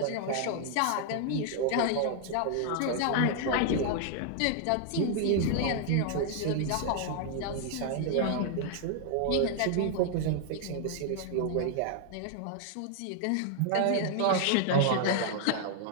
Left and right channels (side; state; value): both; different; correlation 0.00